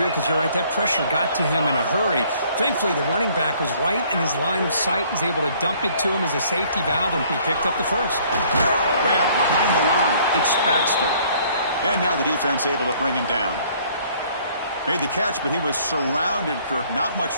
because you're right, that pressure got to him in a hurry. Thankfully, the running back was right in his line of sight. He's able to dump it to him as a safety valve, and he picked up the first. Grab behind the line. It's Baxter. And now the defense able to bring him down. Made the catch, but he was surrounded, Kirk. Not much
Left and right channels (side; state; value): both; inverted; correlation -0.60